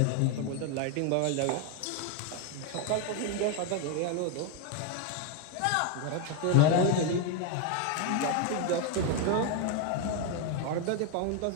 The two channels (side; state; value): both; different; correlation 0.01